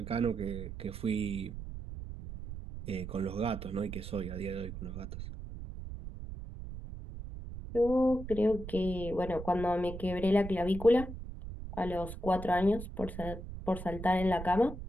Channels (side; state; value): right; noise; rumble, 9 dB below the sound